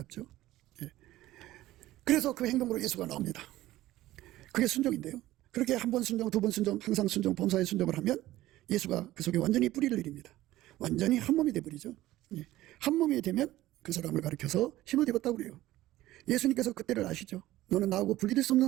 그래서 그 행동으로 예수가 나옵니다. 그게 순종인데요. 그렇게 한 번 순종, 두 번 순종, 항상 순종, 범사에 순종을 하면 예수가 그 속에 완전히 뿌리를 내립니다. 완전히 한 몸이 되버리죠. 한 몸이 되면 그 사람을 가리켜서 힘을 입었다고 그래요. 예수님께서 그때를 아시죠. 너는 나하고 분리될 수 없는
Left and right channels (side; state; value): left; quieter; 15.8 dB